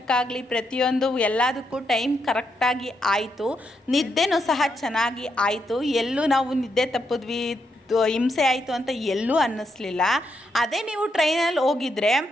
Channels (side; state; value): both; normal; correlation 0.80